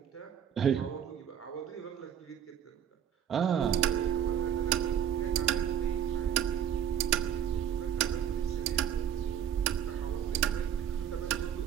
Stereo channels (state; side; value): quieter; left; 9.2 dB